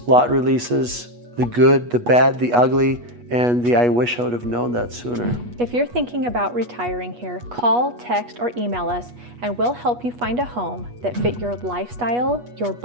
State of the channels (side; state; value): left; late; 8.3 ms